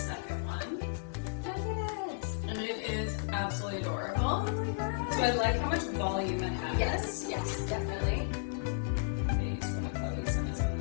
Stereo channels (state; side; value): silent; right; 55 dB below the other